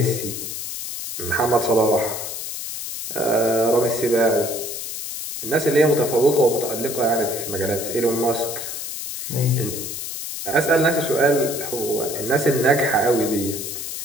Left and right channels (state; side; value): noise; left; hiss, 6 dB below the sound